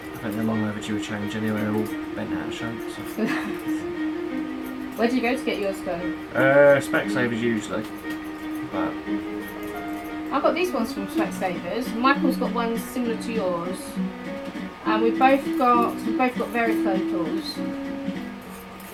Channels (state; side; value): identical; both; correlation 1.00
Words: think they're long overdue a change anyway, they're all bent out of shape. So. Where do you go to get yours done? Specsavers usually, but I got these ones from Specsavers. Michael's got ones similar to yours, and we've both got varifocals.